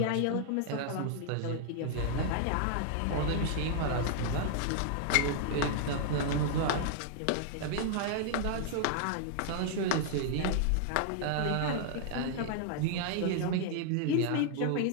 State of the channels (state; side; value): different; both; correlation -0.01